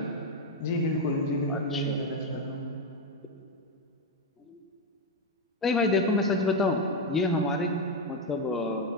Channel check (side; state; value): both; normal; correlation 0.07